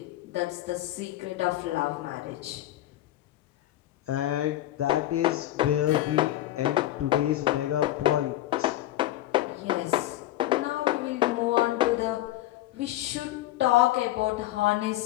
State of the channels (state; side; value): quieter; right; 14.8 dB